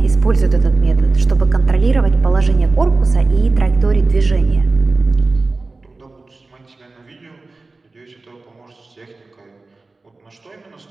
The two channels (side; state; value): left; quieter; 3.5 dB